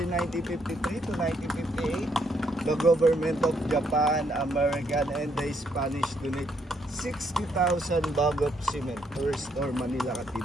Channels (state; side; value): normal; both; correlation 0.73